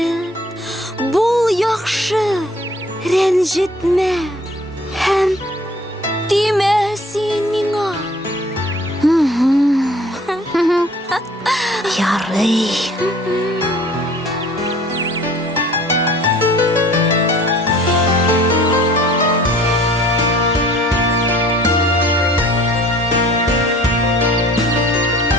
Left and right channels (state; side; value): normal; both; correlation 0.51